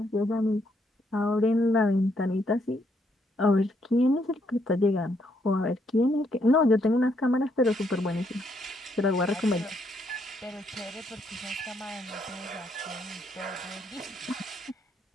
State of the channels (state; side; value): normal; both; correlation 0.74